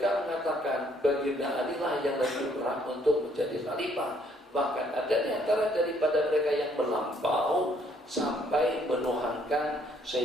mengatakan baginda Ali lah yang lebih berhak untuk menjadi khalifah. Bahkan ada di antara daripada mereka yang melampau sampai menuhankan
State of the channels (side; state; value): both; normal; correlation 0.66